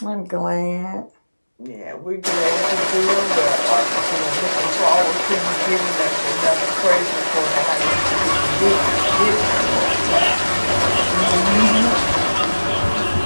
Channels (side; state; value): both; inverted; correlation -1.00